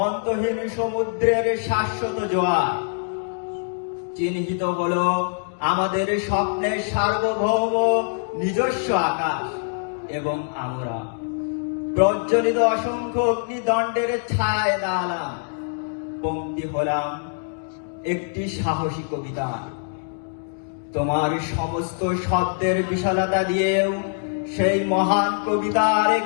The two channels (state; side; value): silent; right; digital silence